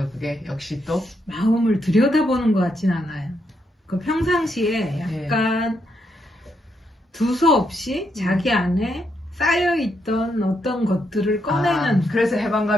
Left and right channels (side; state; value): both; normal; correlation 0.79